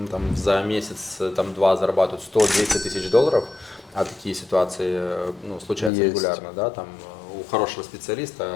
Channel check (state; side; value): drops out; right; at 5.9 s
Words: там, за месяц, там, 2 зарабатывают 100-200 тысяч долларов, а такие ситуации ну, случаются Есть. регулярно, да, там, у хорошего